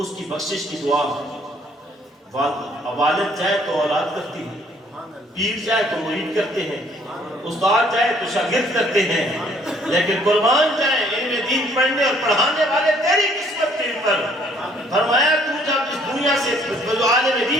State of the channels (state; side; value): normal; both; correlation 0.62